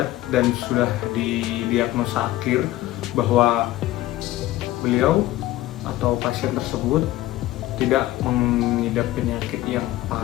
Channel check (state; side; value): quieter; right; 15.8 dB